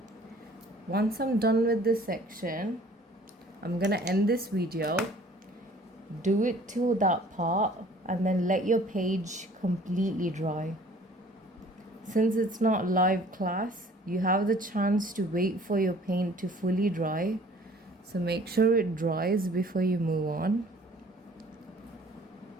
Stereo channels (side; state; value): both; normal; correlation 0.53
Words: Once I'm done with this section, I'm gonna end this video. Do it till that part and then let your page completely dry. Since it's not live class, you have the chance to wait for your paint to fully dry. So make sure it dries before you move on.